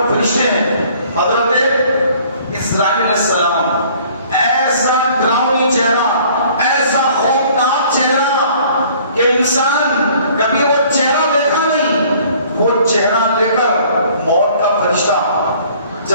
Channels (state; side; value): inverted; both; correlation -0.55